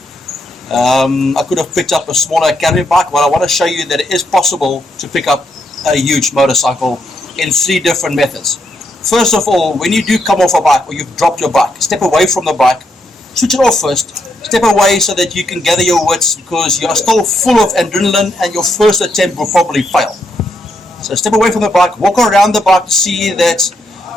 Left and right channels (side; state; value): both; normal; correlation 0.79